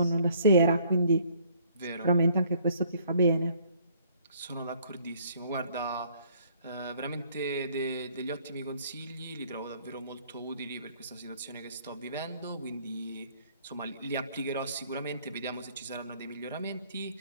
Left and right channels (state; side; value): inverted; both; correlation -0.61